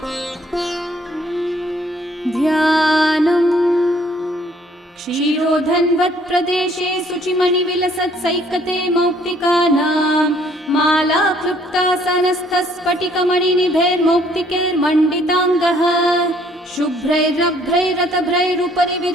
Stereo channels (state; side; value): normal; both; correlation 0.62